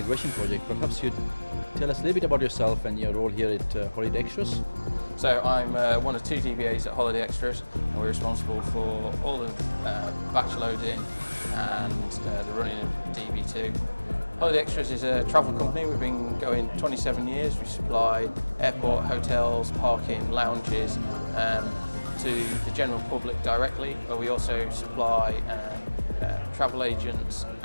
project, perhaps you'd tell us a little bit about yourself and your role here at Holiday Extras. So I'm one of two DBAs at Holiday Extras, and we're responsible for all the batch loading and the running of DB2. Holiday Extras is a travel company. We've been going 27 years. We supply airport, hotels, parking, lounges to the general public directly, but we also supply travel agents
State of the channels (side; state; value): both; inverted; correlation -1.00